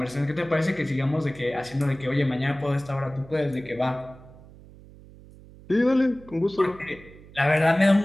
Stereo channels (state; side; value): noise; right; hum, 21 dB below the sound